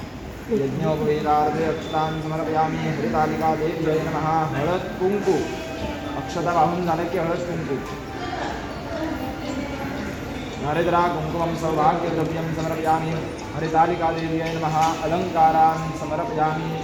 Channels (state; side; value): identical; both; correlation 1.00